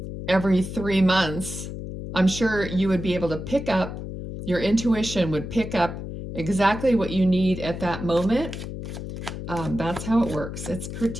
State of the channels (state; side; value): noise; left; hum, 8 dB below the sound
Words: every 3 months, I'm sure you would be able to pick up, your intuition would pick up exactly what you need at that moment. That's how it works. It's